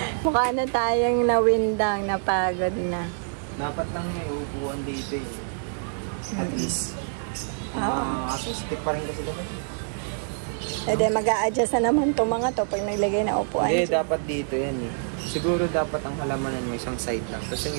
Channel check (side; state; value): left; silent; digital silence